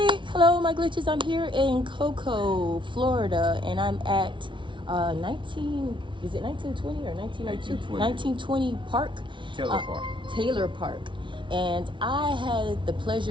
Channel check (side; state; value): left; late; 0.24 ms